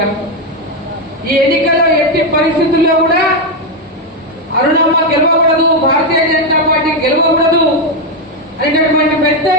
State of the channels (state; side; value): normal; both; correlation 0.05